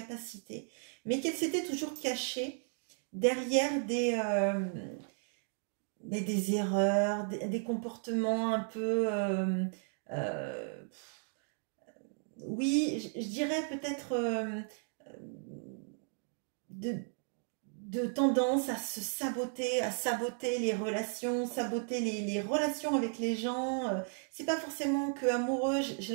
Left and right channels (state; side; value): silent; left; 54 dB below the other